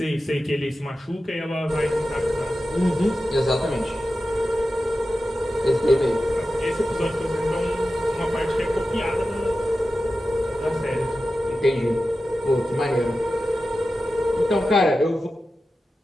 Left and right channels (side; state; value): both; normal; correlation 0.93